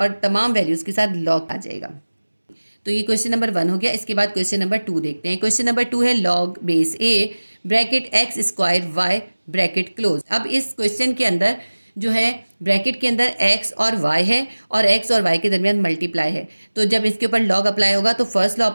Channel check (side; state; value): both; inverted; correlation -1.00